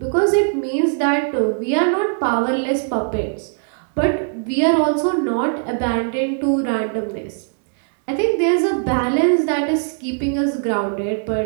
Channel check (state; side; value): silent; left; 60 dB below the other